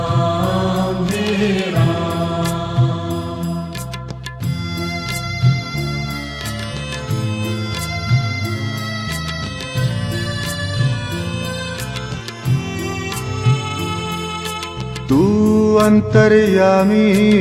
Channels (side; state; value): both; identical; correlation 1.00